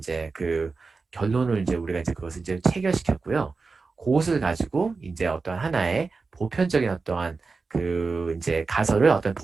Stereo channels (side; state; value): left; quieter; 4.3 dB